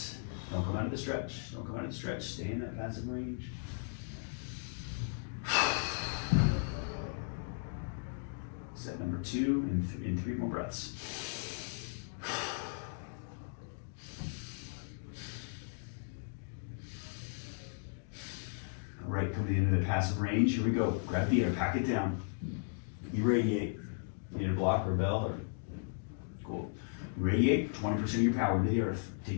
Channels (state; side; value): silent; right; digital silence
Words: Don't come out of the stretch. Don't come out of the stretch. Stay in that passive range. Set number 2 in 3 more breaths. All right, come to the end of the passive range. Here we go. Grab the air, pack it down. Irradiate. You need a block or a bell or cool. Irradiate 20% of your power into the earth.